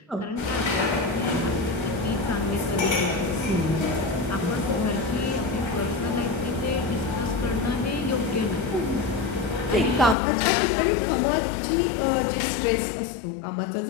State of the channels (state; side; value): drops out; right; at 10.2 s